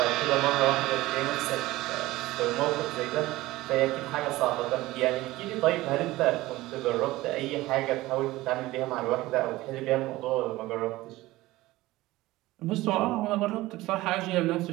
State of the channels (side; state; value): left; quieter; 18.3 dB